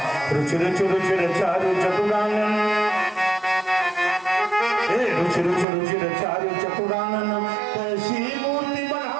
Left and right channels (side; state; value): left; drops out; at 5.7 s